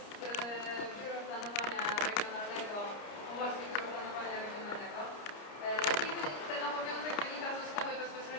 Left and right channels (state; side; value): late; right; 30 ms